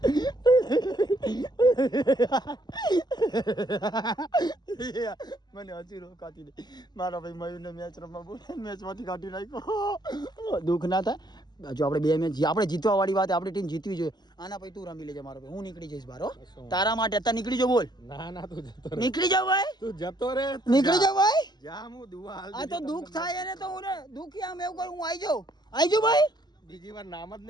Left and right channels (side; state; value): right; late; 0.20 ms